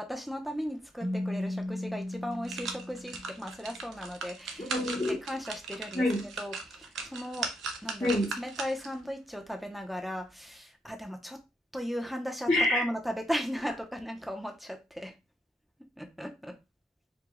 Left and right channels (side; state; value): both; normal; correlation 0.80